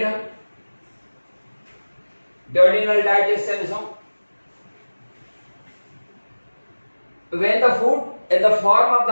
duodenal digestion is when the food in the form of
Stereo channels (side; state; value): both; inverted; correlation -1.00